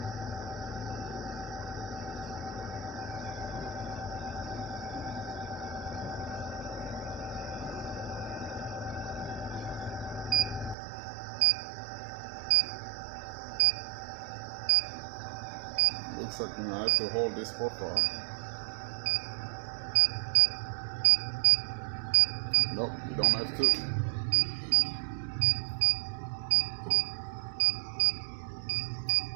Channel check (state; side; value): drops out; left; at 10.8 s